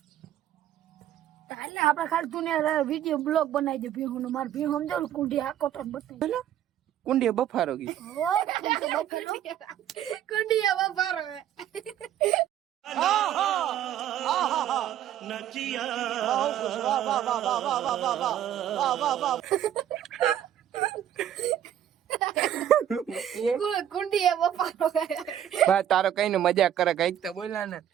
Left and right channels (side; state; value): left; quieter; 10.8 dB